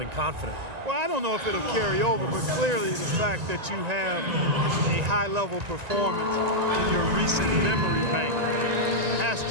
confident. Well, I don't know if it'll carry over, but clearly the fact that you have a high-level performance in your recent memory bank has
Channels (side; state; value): left; late; 1.9 ms